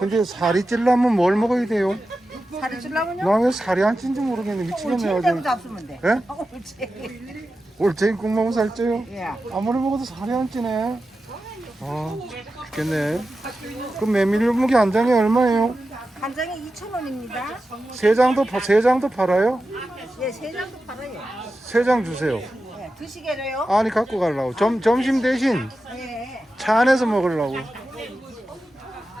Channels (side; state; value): both; normal; correlation 0.92